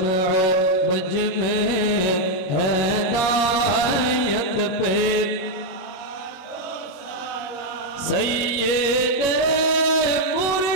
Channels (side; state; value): right; late; 21 ms